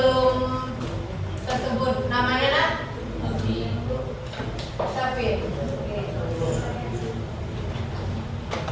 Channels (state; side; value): identical; both; correlation 1.00